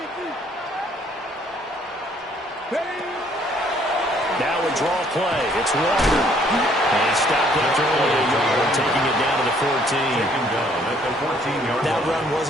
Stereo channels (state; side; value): normal; both; correlation 0.63